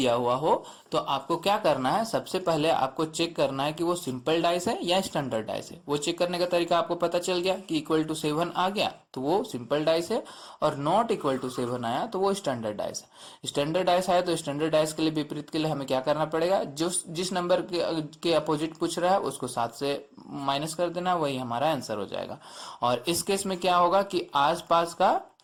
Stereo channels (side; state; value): both; identical; correlation 1.00